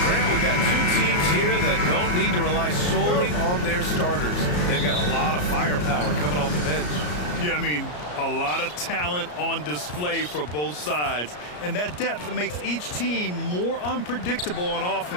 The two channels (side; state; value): right; late; 34 ms